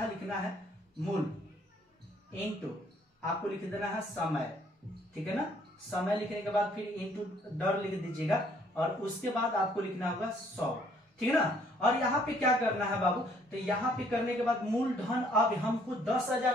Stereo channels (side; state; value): both; normal; correlation 0.63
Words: लिखना है मूल इंटू आपको लिख देना है समय, ठीक है ना। समय लिखने के बाद फिर इंटू दर लिख दीजिएगा, और उसके बाद आपको लिखना होगा 100, ठीक है ना। और यहाँ पे क्या करना है बाबू, तो यहाँ पे करने के बाद मूल धन अब हमको